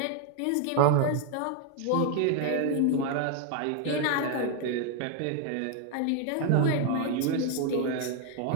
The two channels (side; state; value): both; different; correlation 0.01